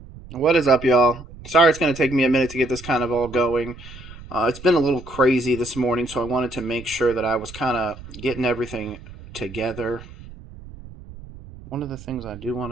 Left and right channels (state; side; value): noise; right; rumble, 16 dB below the sound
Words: What is up, y'all? Sorry it's going to take me a minute to get this kind of all going. It's been a little crazy this morning, so I wanted to make sure that I was kind of getting everything together. One of the things I do